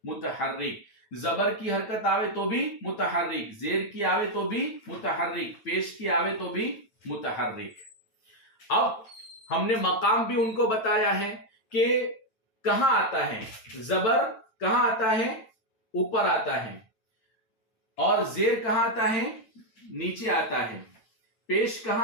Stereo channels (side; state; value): right; late; 9.0 ms